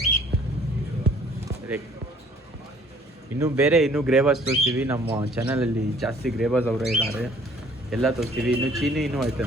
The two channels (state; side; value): normal; both; correlation 0.56